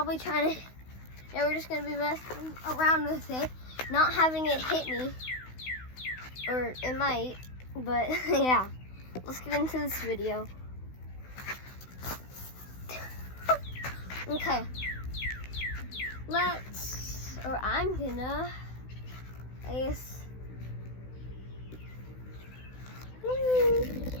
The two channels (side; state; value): right; late; 16 ms